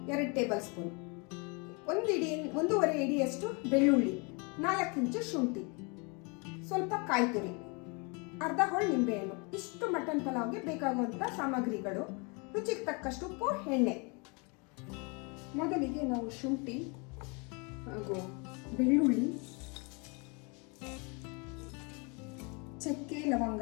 2 ಟೇಬಲ್ ಸ್ಪೂನ್, 1.5 ಇಡಿಯಷ್ಟು ಬೆಳ್ಳುಳ್ಳಿ, 4 ಇಂಚು ಶುಂಠಿ, ಸ್ವಲ್ಪ ಕಾಯಿ ತುರಿ, ಅರ್ಧ ಹೋಳು ನಿಂಬೆಹಣ್ಣು. ಇಷ್ಟು ಮಟನ್ ಪಲಾವ್ಗೆ ಬೇಕಾಗುವಂಥ ಸಾಮಗ್ರಿಗಳು. ರುಚಿಗೆ ತಕ್ಕಷ್ಟು ಉಪ್ಪು, ಎಣ್ಣೆ. ಮೊದಲಿಗೆ ನಾವು ಶುಂಠಿ ಹಾಗೂ ಬೆಳ್ಳುಳ್ಳಿ, ಚಕ್ಕೆ, ಲವಂಗ,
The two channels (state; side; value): quieter; right; 31.9 dB